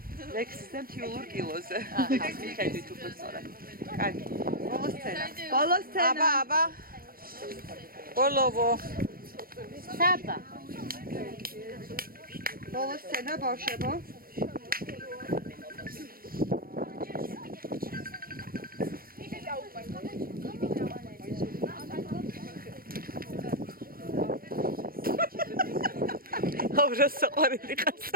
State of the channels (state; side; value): late; left; 0.43 ms